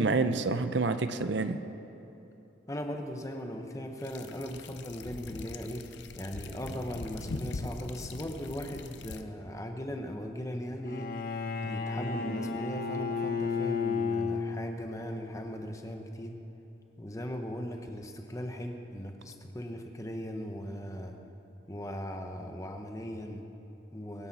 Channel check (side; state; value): both; normal; correlation 0.54